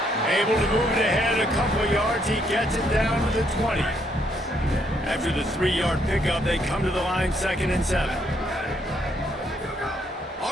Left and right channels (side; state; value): both; normal; correlation 0.72